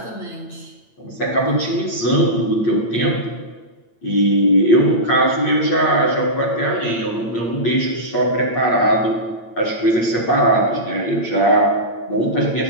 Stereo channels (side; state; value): right; late; 8.8 ms